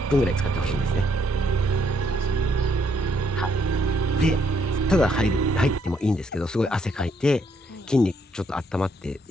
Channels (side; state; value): both; normal; correlation 0.71